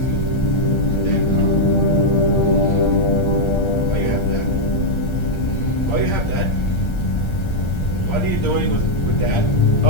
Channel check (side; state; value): right; late; 1.3 ms